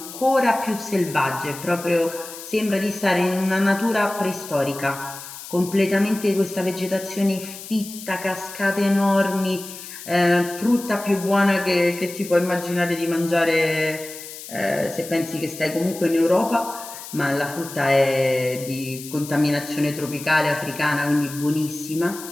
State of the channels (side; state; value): left; noise; hiss, 13 dB below the sound